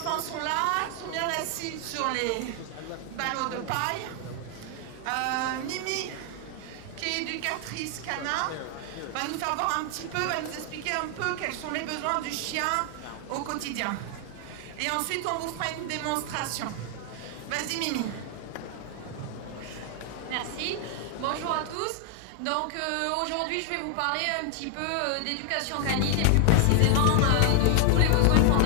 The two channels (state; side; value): different; both; correlation 0.00